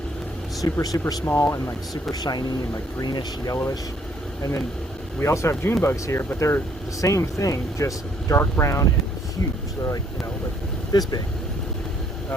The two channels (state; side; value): normal; both; correlation 0.66